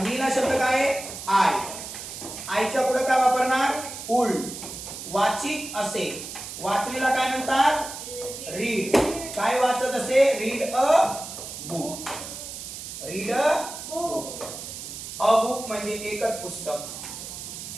मीला शब्द काय आहे? आय. आयच्या पुढे काय वापरणार? उल. वाचित असे, वाचलेला काय म्हणतात? रीड. काय वाचत असे? Read a book. Read a book. A book म्हणजे एकच पुस्तक.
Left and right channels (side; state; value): right; noise; hiss, 10 dB below the sound